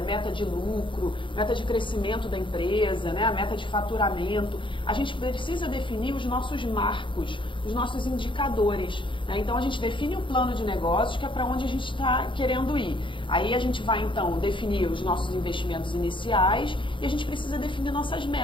meta de lucro, meta de crescimento da empresa, né, a meta de faturamento. A gente precisa definir os nossos marcos, os nossos indicadores. Né? Então, a gente define um plano de negócios que é para onde a gente está querendo ir. Aí a gente vai, então, definir os nossos investimentos iniciais e a gente precisa definir nossas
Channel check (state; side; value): late; right; 0.24 ms